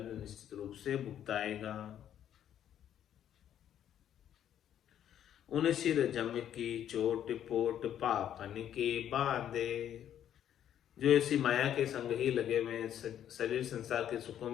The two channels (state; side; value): quieter; right; 10.3 dB